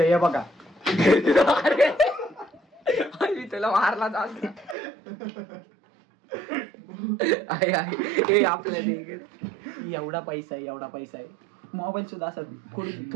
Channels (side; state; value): left; drops out; at 4.8 s